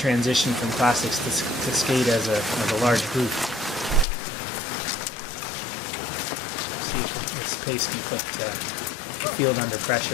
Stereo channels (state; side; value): drops out; right; at 4.0 s